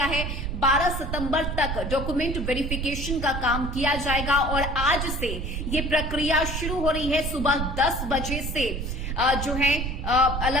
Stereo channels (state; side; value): noise; right; rumble, 3 dB below the sound